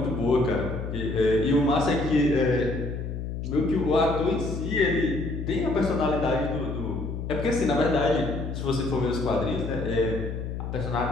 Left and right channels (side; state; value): left; noise; hum, 5 dB below the sound